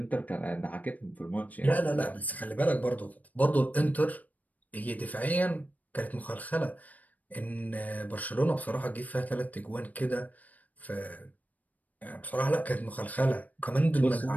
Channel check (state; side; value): late; right; 0.075 ms